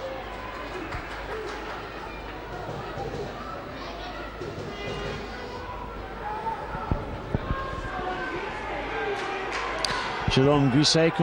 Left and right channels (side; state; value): both; identical; correlation 1.00